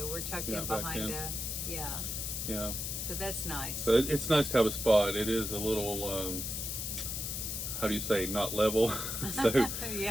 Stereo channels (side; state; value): left; noise; hiss, 3 dB below the sound